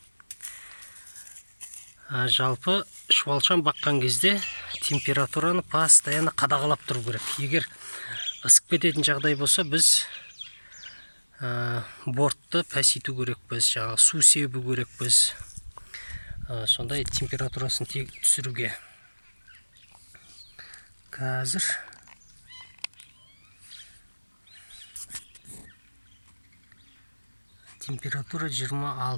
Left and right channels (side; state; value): both; inverted; correlation -1.00